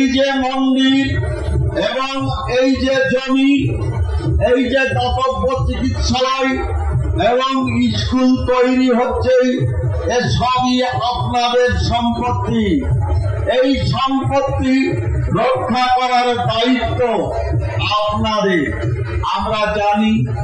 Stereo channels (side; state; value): both; identical; correlation 1.00